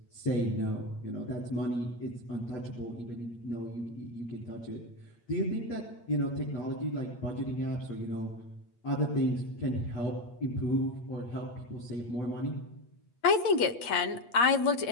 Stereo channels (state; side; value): late; right; 8.4 ms